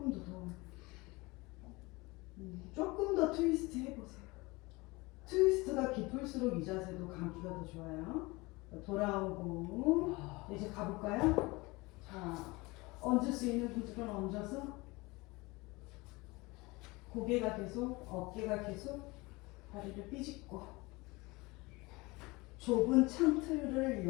더. 조금 더 트위스트 해보세요. 트위스트가 깊을수록 이 자세도 감기가 더 좋아요. 돌아오고 이제 가볼까요? 자, 얹을 수 있는 분들은 얹어서 고개가 계속, 어깨가 계속 다리를 삐집고 좁은 창틀을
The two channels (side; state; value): right; quieter; 23.6 dB